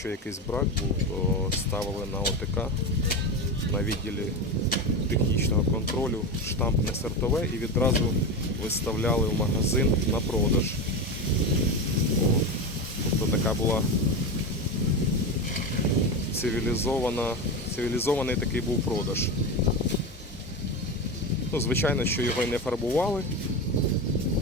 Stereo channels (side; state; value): both; normal; correlation 0.19